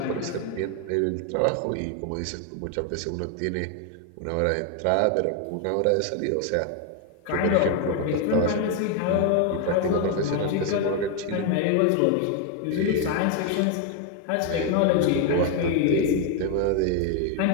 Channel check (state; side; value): different; both; correlation 0.01